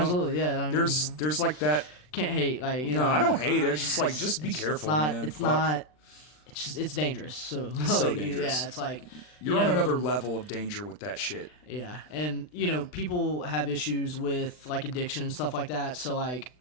I mean, there's like that. Can't hate, like, No, I don't hate it. It's just like, just be careful, man. It's not. It's just, it's dangerous. So, so dangerous. Yeah, it's like you're on another level of danger with that shit. Yeah, and people have issues with like addiction and stuff like that. So like,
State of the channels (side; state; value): right; late; 39 ms